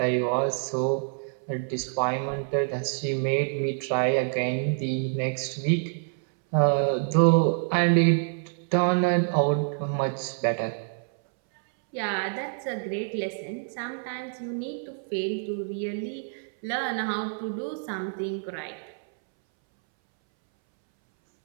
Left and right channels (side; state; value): left; silent; 60 dB below the other